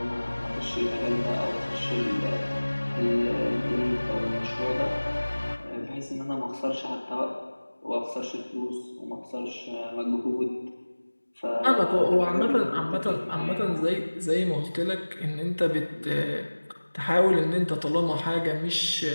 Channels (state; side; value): inverted; both; correlation -1.00